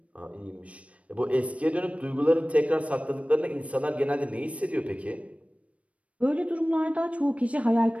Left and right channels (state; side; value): late; left; 0.064 ms